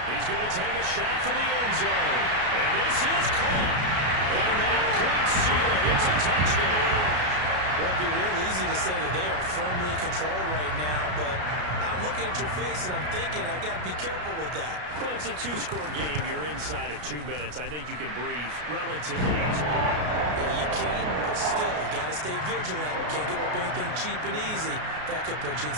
He's going to take a shot for the end zone. And this is caught. And that could seal it. It's a touchdown. Well, it'd be real easy to say that they are firmly in control right now, but I'm looking at your face and I'm thinking I've got to be careful with that. Well, it's a 2-score game. You're inside of 2 minutes. I think you can breathe relatively easily. Yeah, you can, but still, you got to stay vigilant. Can't give up anything cheap and easy. That could put you in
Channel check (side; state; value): left; late; 33 ms